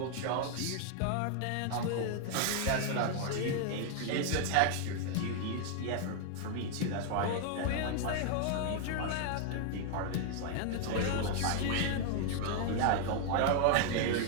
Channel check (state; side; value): different; both; correlation 0.00